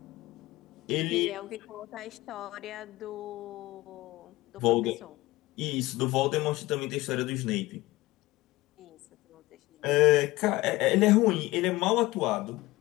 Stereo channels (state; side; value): quieter; right; 18.9 dB